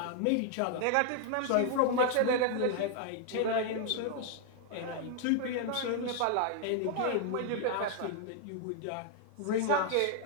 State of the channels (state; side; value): different; both; correlation 0.00